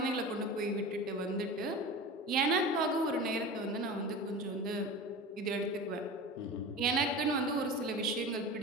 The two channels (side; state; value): both; normal; correlation 0.32